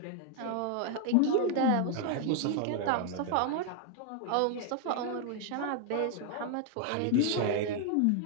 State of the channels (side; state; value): both; different; correlation 0.00